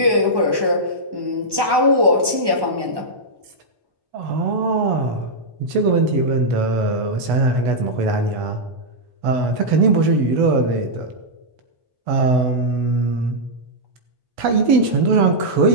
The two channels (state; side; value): late; left; 1.1 ms